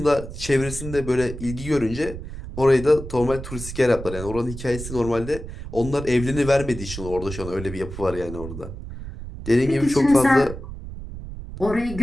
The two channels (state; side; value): noise; right; rumble, 10 dB below the sound